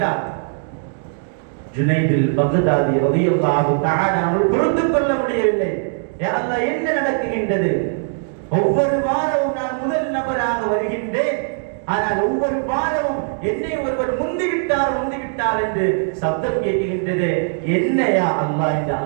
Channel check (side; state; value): left; silent; digital silence